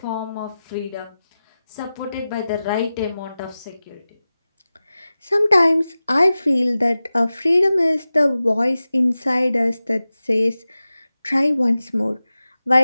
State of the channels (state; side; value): inverted; both; correlation -0.95